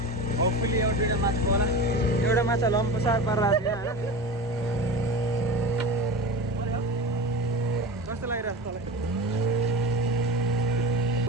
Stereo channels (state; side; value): normal; both; correlation 0.29